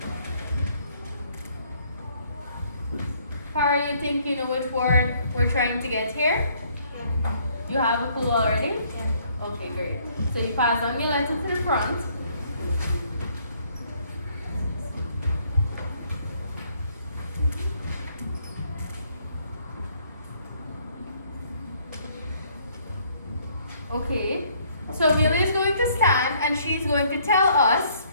How you think you know which word we're trying to get here? You have a clue already? Okay, great. So you pass on your letter to the front. Okay, so Amelia is going to stand and she's going to tell us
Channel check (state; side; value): inverted; both; correlation -0.65